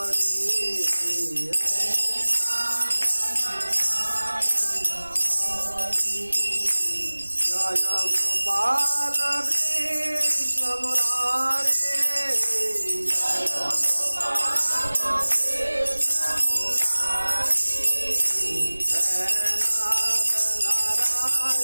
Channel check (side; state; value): both; inverted; correlation -1.00